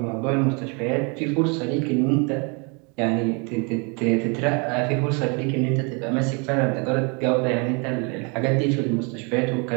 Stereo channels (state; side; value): quieter; left; 32.8 dB